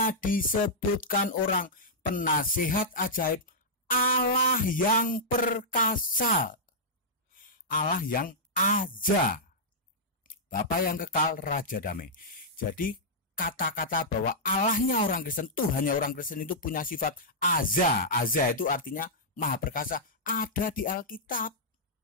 disebutkan orang penasihat ajaib, Allah yang perkasa, Allah yang Azza, Bapa yang kekal, Raja damai. Jadi kata-kata bahwa Allahnya orang Kristen, Tuhannya orang Kristen itu punya sifat Azza. Azza itu artinya Maha Perkasa, ada di Alkitab.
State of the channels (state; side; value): normal; both; correlation -0.10